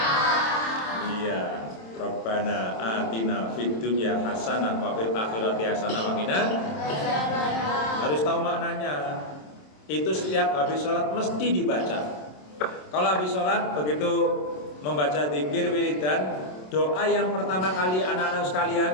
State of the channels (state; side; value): late; right; 27 ms